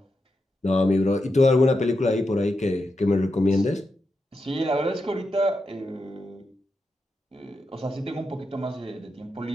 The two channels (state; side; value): normal; both; correlation 0.87